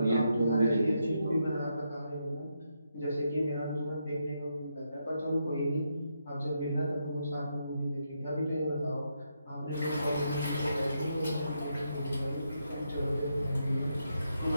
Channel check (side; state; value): both; inverted; correlation -0.81